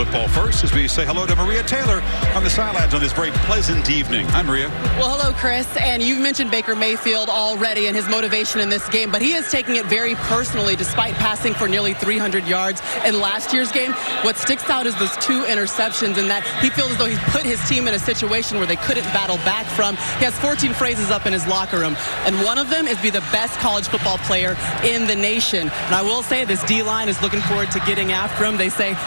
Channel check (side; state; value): both; inverted; correlation -1.00